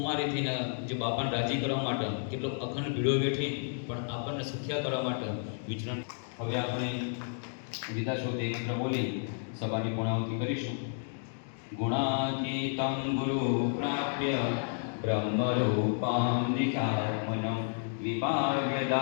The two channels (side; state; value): right; silent; digital silence